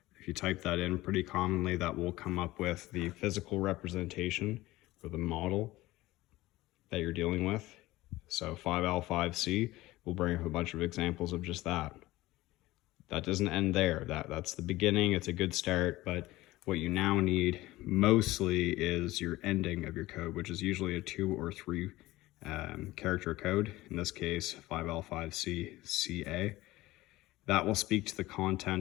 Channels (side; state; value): right; quieter; 18.1 dB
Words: If you type that in pretty commonly, that will come up with the physical representation or the model that you're dealing with. So 5L, 5C will bring up a bunch of examples of just that. That doesn't end there. That's the beginning. It's a good start, but what you now need mostly is your ending of your code, which is usually a 2 or 3 character code. In this case, 5L, 5C, CA. That will speak to the